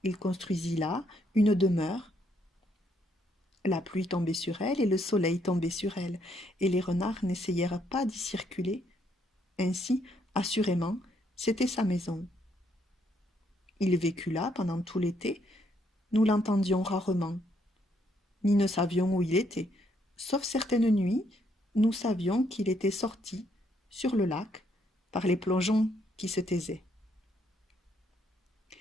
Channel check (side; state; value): both; normal; correlation 0.72